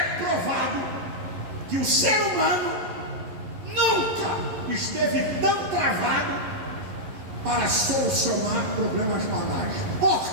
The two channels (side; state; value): left; late; 11 ms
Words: provado que o ser humano nunca esteve tão travado para solucionar problemas banais.